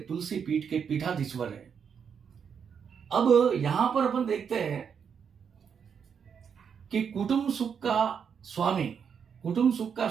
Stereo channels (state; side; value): quieter; left; 7.1 dB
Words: तुलसी पीठ के पीठाधीश्वर है। अब यहां पर अपन देखते हैं कि कुटुंब सुख का